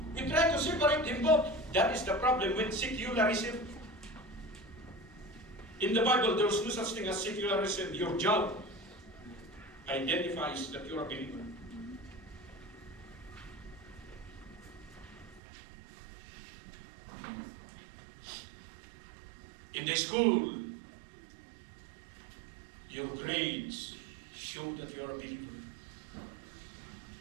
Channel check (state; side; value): drops out; left; at 15.4 s